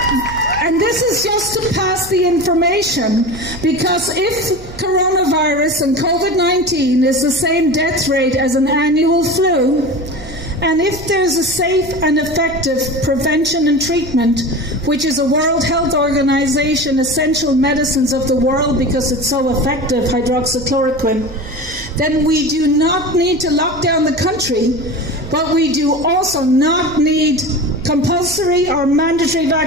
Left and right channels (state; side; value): noise; right; hum, 19 dB below the sound